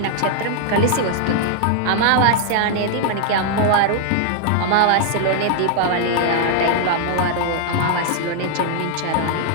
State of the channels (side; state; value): both; different; correlation -0.01